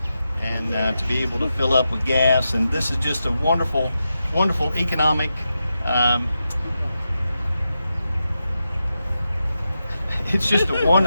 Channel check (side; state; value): both; inverted; correlation -0.88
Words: and to be able to fill up with gas. And this is just a wonderful, wonderful economic it's just a